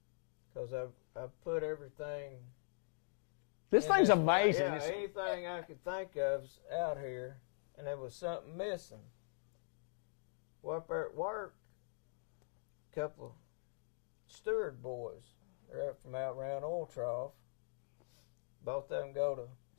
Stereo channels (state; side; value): silent; right; digital silence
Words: Because I've put everything. This thing's amazing. Yeah, anything I could think of's out here, and there was something missing. Well, up there at work, a couple of steward boys, they're up from out around Oil Trough. Both of them go to